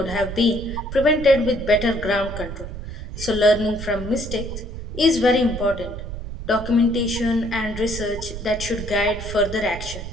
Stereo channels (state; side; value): noise; right; rumble, 8 dB below the sound